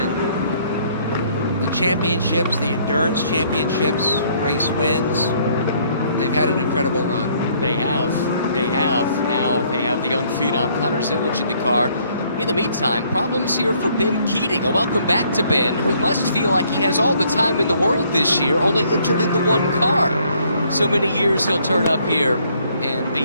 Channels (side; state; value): both; inverted; correlation -0.65